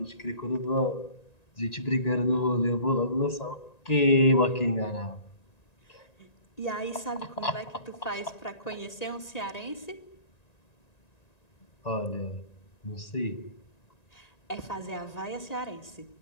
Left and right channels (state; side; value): late; right; 1.9 ms